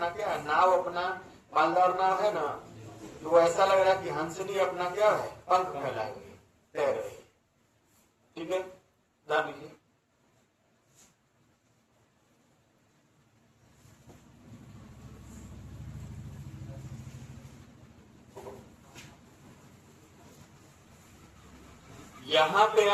क्या है, नाव अपना पालदार नाव है ना, तो ऐसा लग रहा है कि हंसनी अपना क्या है, पंख फैलाए हुए तैर रही। ठीक है, जान लीजिए। यहां पे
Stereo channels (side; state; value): both; identical; correlation 1.00